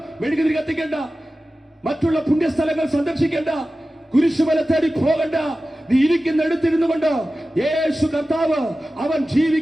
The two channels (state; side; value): normal; both; correlation 0.95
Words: മെഴുകുതിരി കത്തിക്കേണ്ട, മറ്റുള്ള പുണ്യസ്ഥലങ്ങൾ സന്ദർശിക്കേണ്ട, കുരിശുമല തേടി പോകണ്ട. നീ ഇരിക്കുന്നിടത്തിരുന്നു കൊണ്ട് യേശു കർത്താവ് അവൻ